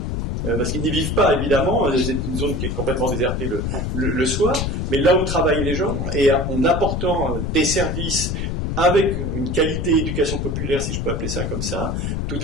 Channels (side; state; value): left; noise; rumble, 1 dB below the sound